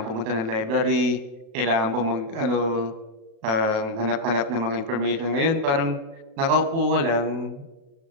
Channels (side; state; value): left; late; 37 ms